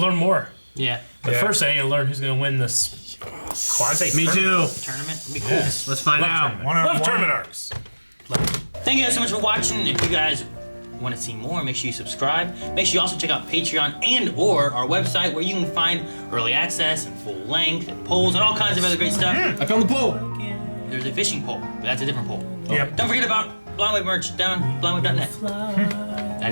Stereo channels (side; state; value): both; inverted; correlation -1.00